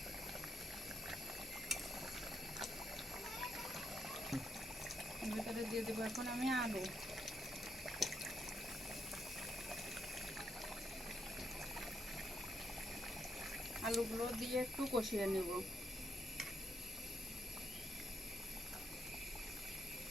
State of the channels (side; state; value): both; normal; correlation 0.79